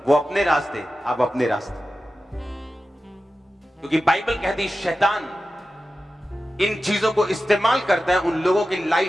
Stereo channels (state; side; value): normal; both; correlation 0.93